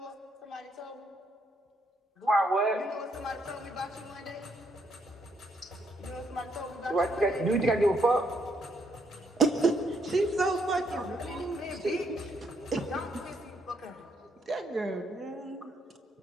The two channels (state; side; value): normal; both; correlation 0.73